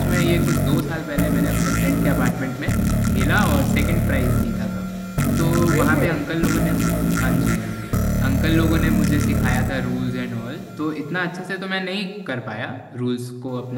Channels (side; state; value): both; identical; correlation 1.00